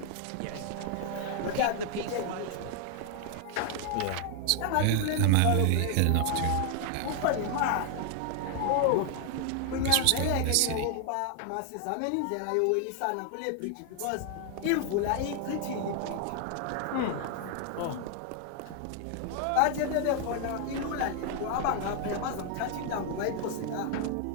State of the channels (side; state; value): both; different; correlation 0.00